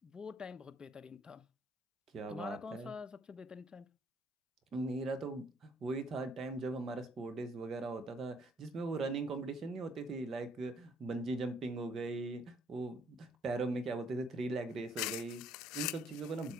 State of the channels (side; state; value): both; normal; correlation 0.65